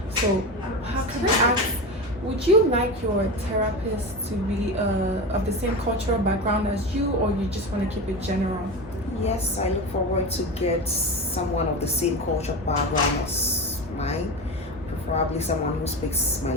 So, how can I ask? Would you like your therapist to be of the same cultural background as you, or you just want to keep it general? Yes, I look forward to get someone of the same culture background as mine, preferably someone who speaks my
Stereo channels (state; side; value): normal; both; correlation 0.23